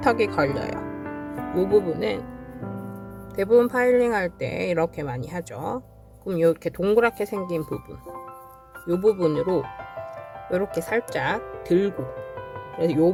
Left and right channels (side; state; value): both; identical; correlation 1.00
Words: 걸려요. 이 부분은 대부분 파일링 할 때 이렇게 많이 하죠. 그럼 이렇게 동그랗게 생긴 부분, 이 부분으로 이렇게 살짝 들고, 그래서 이